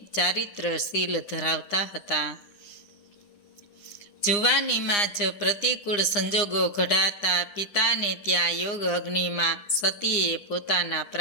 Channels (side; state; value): right; late; 9.8 ms